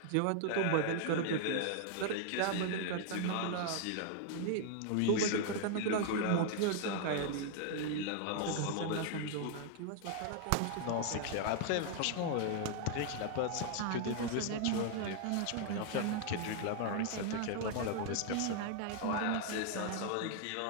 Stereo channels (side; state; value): both; different; correlation 0.00